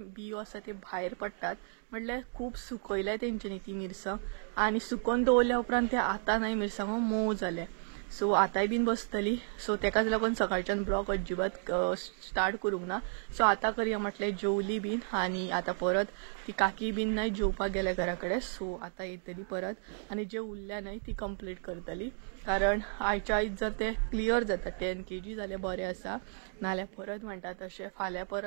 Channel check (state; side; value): silent; left; 56 dB below the other